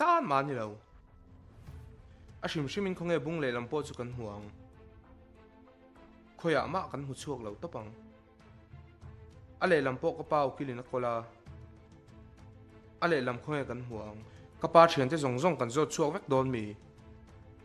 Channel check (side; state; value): both; identical; correlation 1.00